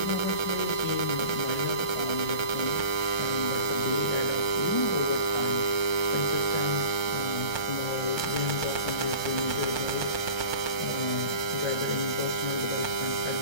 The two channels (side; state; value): right; late; 1.3 ms